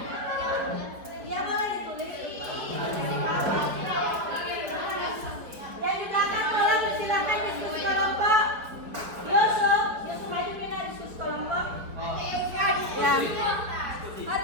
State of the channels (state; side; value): late; left; 4.7 ms